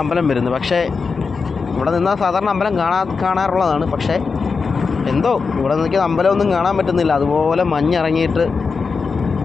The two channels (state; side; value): quieter; right; 4.9 dB